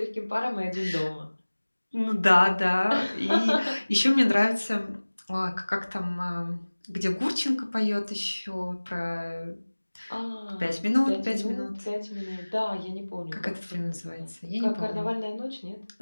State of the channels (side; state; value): both; inverted; correlation -1.00